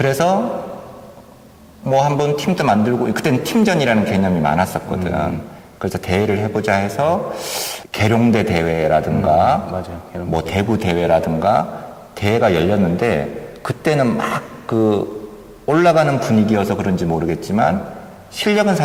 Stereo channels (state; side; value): identical; both; correlation 1.00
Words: 뭐 한번 팀도 만들고 그때는 팀전이라는 개념이 많았었거든. 그래서 대회를 해보자 해서 계룡대 대회라든가 맞아요. 뭐 대구 대회라든가 대회가 열렸는데 그때는 막 올라가는 분위기여서 그런지 모르겠지만 실력은